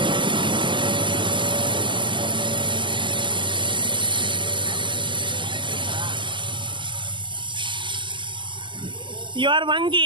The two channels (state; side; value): late; left; 0.24 ms